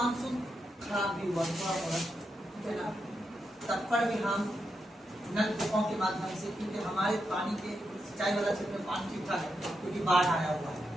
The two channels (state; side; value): normal; both; correlation 0.84